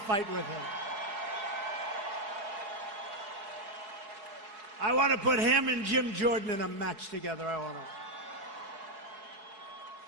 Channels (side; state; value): left; late; 4.5 ms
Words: with him. I want to put him and Jim Jordan in a match together. I want to.